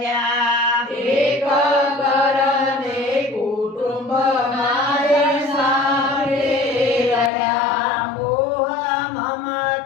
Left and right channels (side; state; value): right; drops out; at 7.3 s